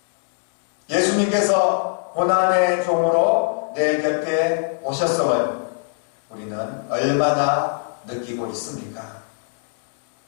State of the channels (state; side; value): silent; right; digital silence